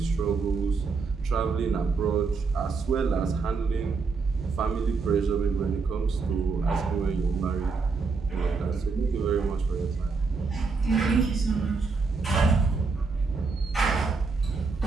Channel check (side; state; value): left; quieter; 4.5 dB